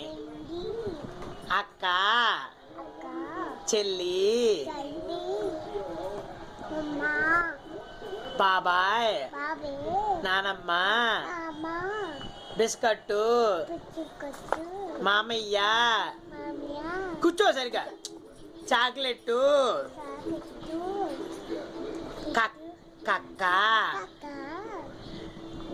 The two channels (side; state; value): both; identical; correlation 1.00